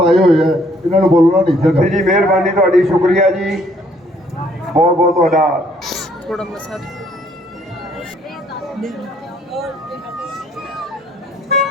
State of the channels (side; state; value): both; normal; correlation 0.64